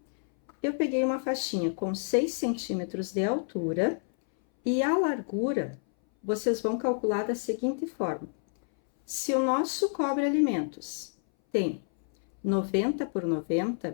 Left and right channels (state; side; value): silent; right; 59 dB below the other